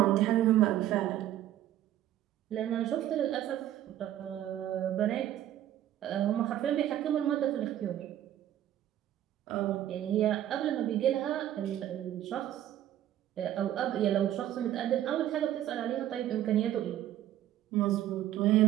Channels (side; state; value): left; quieter; 12.3 dB